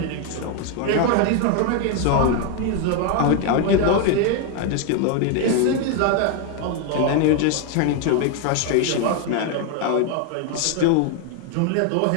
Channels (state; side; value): different; both; correlation 0.01